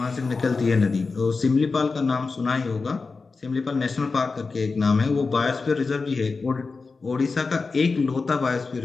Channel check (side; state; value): right; quieter; 4.3 dB